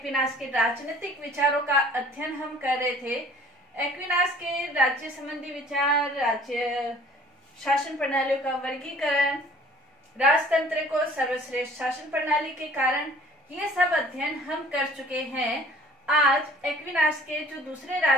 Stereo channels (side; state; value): both; normal; correlation 0.51